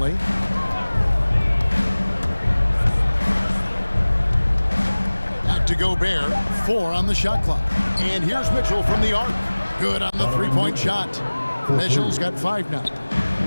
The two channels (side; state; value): both; inverted; correlation -1.00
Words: Back to Gobert. 4 on the shot clock. And here's Mitchell from the arc. Good on the three-point shot. Mitchell's got 5 now.